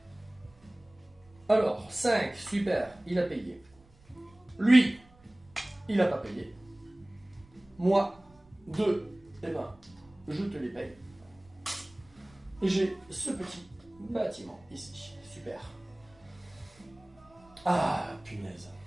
Alors, 5, super, il a payé. Lui, il n'a pas payé. Moi, 2, eh ben, je te les paye. Et j'ai ce petit bâtiment ici. Super. Ah, punaise.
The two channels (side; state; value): right; noise; rumble, 28 dB below the sound